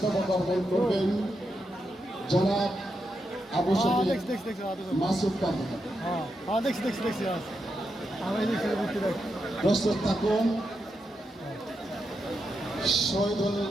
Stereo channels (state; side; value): normal; both; correlation 0.85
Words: অর্পণ করবেন জনাব আবু শফিক মাসুদ কাদের। প্রস্তুত থাকুন শহীদুল